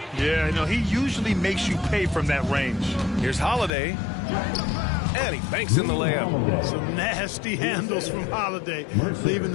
Yeah, you know, he usually makes you pay from that range. Here's Holiday. And he banks in the layup. Some nasty handles from Holiday, leaving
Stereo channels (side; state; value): right; drops out; at 3.7 s